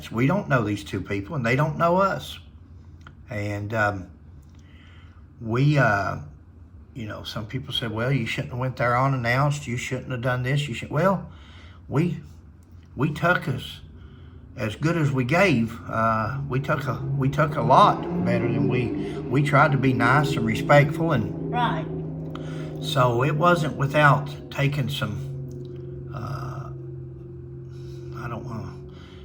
We don't know these two people, and they don't know us. And some people said, well, you shouldn't have went there unannounced. You shouldn't have done this. Well, we took as good as we gave. We took a lot better than we tried to be nice and respectful, and Right. so it wasn't without taking some. I don't want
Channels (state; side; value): identical; both; correlation 1.00